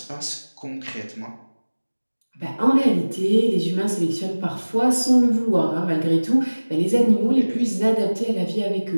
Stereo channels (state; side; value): inverted; both; correlation -1.00